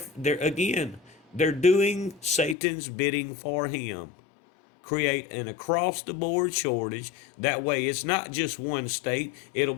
doing Satan's bidding for him. Create an across the board shortage. That way it's not just one state, it'll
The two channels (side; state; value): right; drops out; at 2.6 s